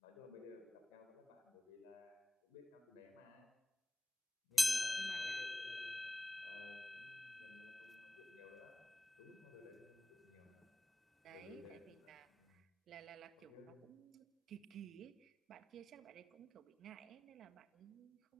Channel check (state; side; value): normal; both; correlation 0.96